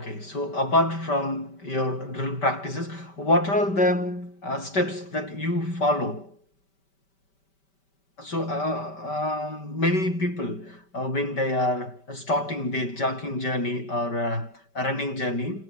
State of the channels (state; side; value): late; right; 5.1 ms